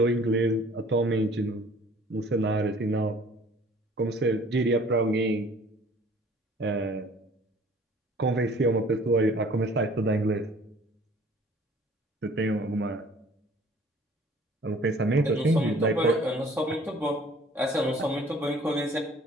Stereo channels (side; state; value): both; normal; correlation 0.53